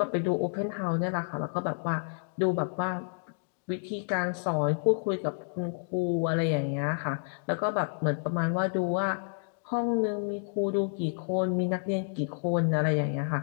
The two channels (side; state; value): right; silent; digital silence